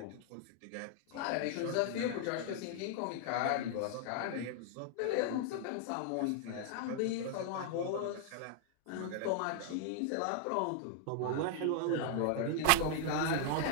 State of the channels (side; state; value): both; different; correlation 0.00